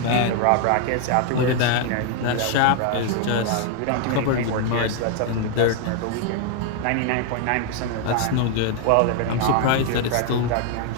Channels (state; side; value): different; both; correlation 0.00